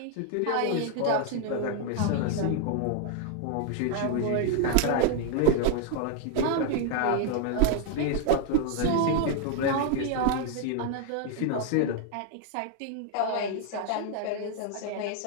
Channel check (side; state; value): both; different; correlation 0.00